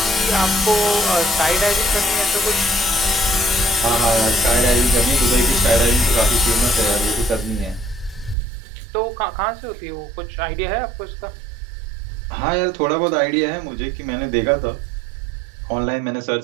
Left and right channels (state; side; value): drops out; left; at 8.3 s